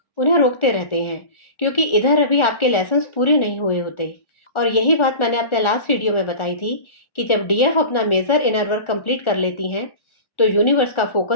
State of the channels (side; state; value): right; late; 1.4 ms